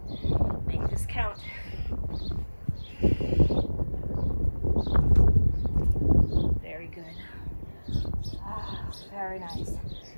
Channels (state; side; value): inverted; both; correlation -1.00